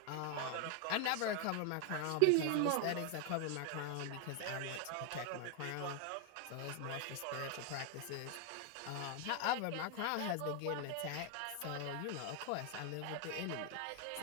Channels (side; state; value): both; different; correlation 0.00